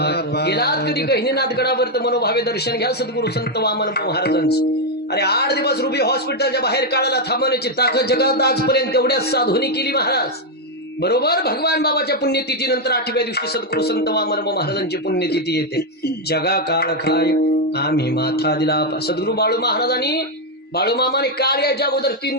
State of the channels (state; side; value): normal; both; correlation 0.02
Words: गेलात कधी गहिनीनाथ गडावर तर मनोभावे दर्शन घ्या सद्गुरु संत वामन महाराजांचं. अरे 8 दिवस रुबी हॉस्पिटलच्या बाहेर काढायला थांबवण्याची ताकद जगात आजपर्यंत तेवढ्याच साधूनी केली महाराज. बरोबर भगवान बाबाच्या पुण्यतिथीनंतर 8व्या दिवशी सद्गुरु संत वामन महाराजांची पुण्यतिथी येते. जगा काळ खाय आम्ही माथा दिला. सद्गुरु बाळू महाराजांनी बाळू मामाने काळ याच्या अगोदर 3